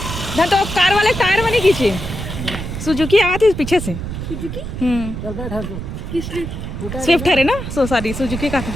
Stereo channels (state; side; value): noise; right; rumble, 7 dB below the sound